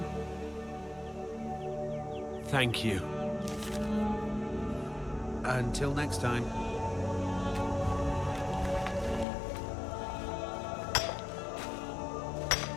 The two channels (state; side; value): drops out; right; at 9.2 s